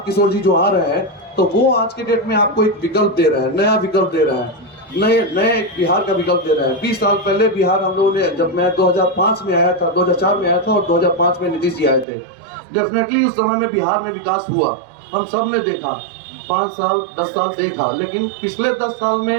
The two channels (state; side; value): drops out; left; at 12.1 s